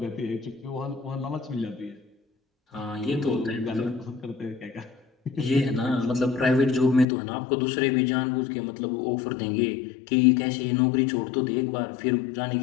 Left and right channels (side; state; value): right; drops out; at 7.1 s